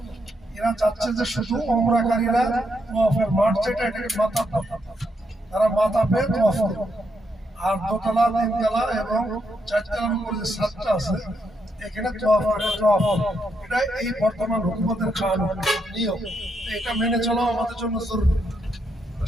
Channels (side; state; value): both; normal; correlation 0.79